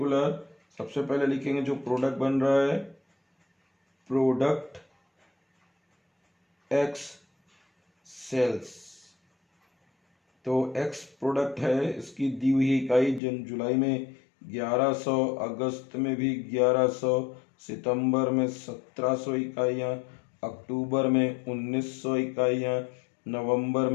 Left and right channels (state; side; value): drops out; right; at 13.2 s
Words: सबसे पहले लिखेंगे जो प्रोडक्ट बन रहा है, प्रोडक्ट एक्स सेल्स। तो एक्स प्रोडक्ट है, इसकी दी हुई इकाई जुलाई में 1100, अगस्त में भी 1100, सितंबर में 1700 इकाइयाँ, अक्टूबर में 1900 इकाइयाँ, नवंबर